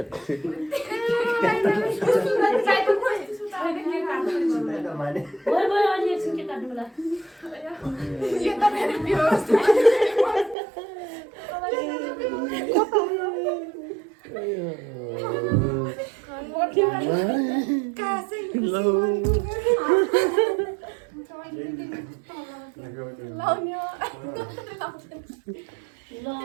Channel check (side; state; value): left; drops out; at 10.6 s